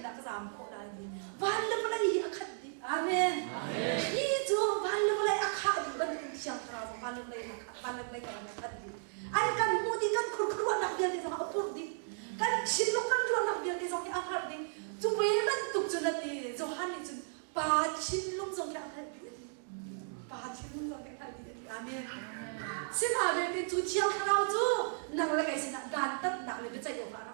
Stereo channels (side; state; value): left; silent; digital silence